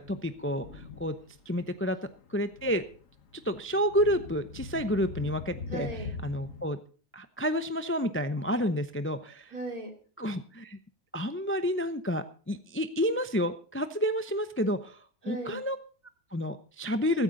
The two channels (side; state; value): both; normal; correlation 0.23